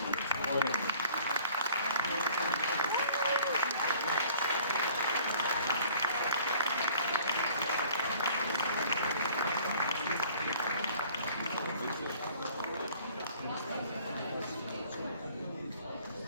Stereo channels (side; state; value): both; inverted; correlation -0.53